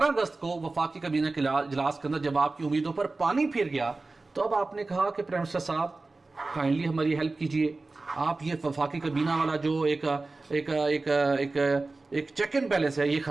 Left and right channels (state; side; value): quieter; left; 3.4 dB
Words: अगस्त को वफाकी काबीना के इजलास के अंदर जब आपकी उम्मीदों पर पानी फिर गया, तो अब आपने कहा कि प्राइम मिनिस्टर साहब काइंडली हमारी हेल्प कीजिए। आप ये वफाकी काबीना वाला जो एक चेक एंड बैलेंस है, ये